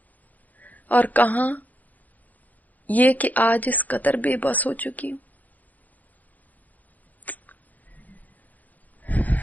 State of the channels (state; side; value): late; right; 0.081 ms